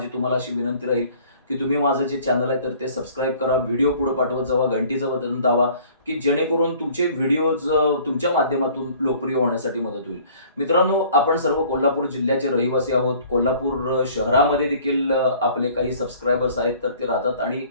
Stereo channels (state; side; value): inverted; both; correlation -0.53